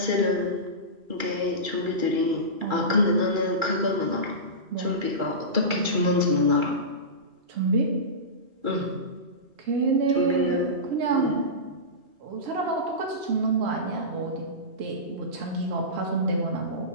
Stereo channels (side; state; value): left; late; 2.3 ms